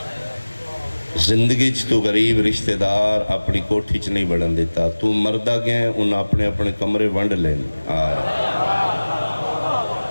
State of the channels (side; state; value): both; inverted; correlation -1.00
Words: زندگی چ تو غریب رشتہ دار اپنی کوٹھی چ نہیں بڑھن دیتا، تو مردہ گئے انہاں اپنے اپنے کمرے ونڈ لین آئے۔